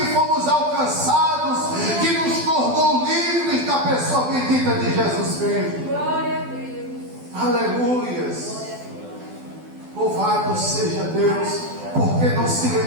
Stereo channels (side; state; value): left; late; 12 ms